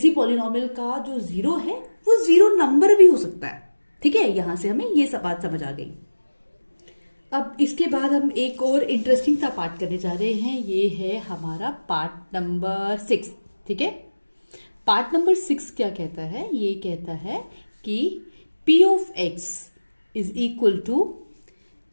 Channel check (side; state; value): both; inverted; correlation -1.00